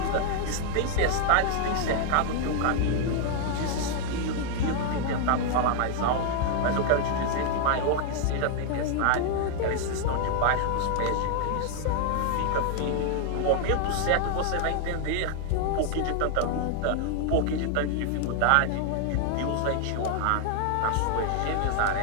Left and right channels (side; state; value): both; different; correlation 0.00